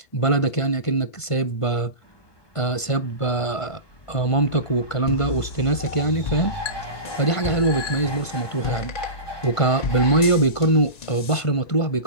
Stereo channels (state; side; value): late; right; 1.5 ms